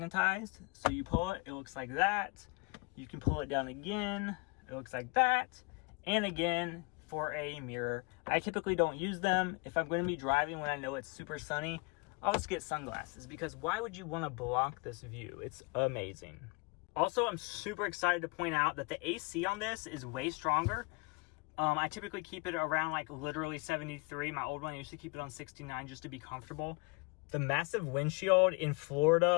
So you pull it, it looks like that. You can pull it down again. It looks like that. And again, for a mirror. I typically don't use them. If I'm going to be driving when I know it's super sunny, I'll just get sunglasses, because why would you want to block this view? It's amazing. Also, I'm super excited to point out that the AC on this is way stronger. I typically keep it around like literally 73. My old one, I used to keep it on 69 just to be comfortable. The massive windshield in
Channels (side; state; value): right; quieter; 29.4 dB